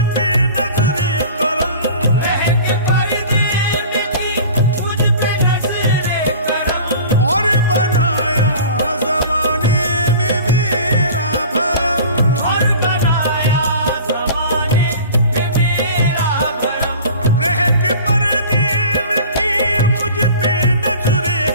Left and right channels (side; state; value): both; inverted; correlation -0.41